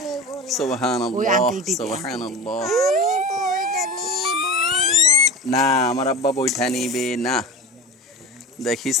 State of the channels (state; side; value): normal; both; correlation 0.31